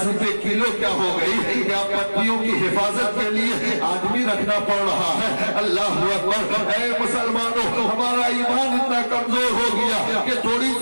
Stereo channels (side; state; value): both; inverted; correlation -1.00